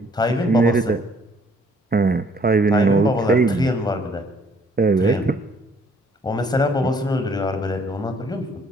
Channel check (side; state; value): both; normal; correlation 0.62